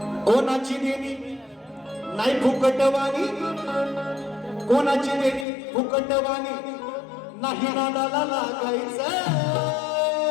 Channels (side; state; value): right; drops out; at 5.5 s